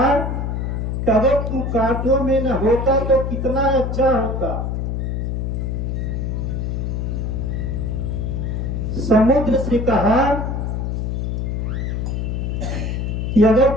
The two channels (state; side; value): noise; left; hum, 1 dB below the sound